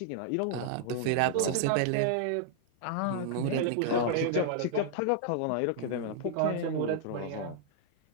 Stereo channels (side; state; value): both; different; correlation -0.01